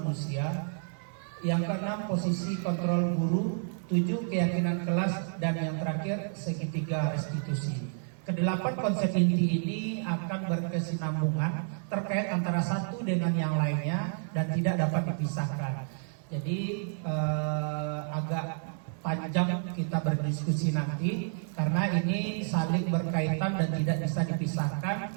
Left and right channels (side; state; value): left; silent; 58 dB below the other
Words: Yang keenam posisi kontrol guru. 7 keyakinan kelas, dan yang terakhir segitiga restitusi. Kedelapan konsep inti ini akan berkesinambungan terkait antara satu dengan yang lainnya dan tidak dapat dipisahkan. Jadi agak panjang kita berdiskusi nanti karena ini saling berkaitan dan tidak bisa dipisahkan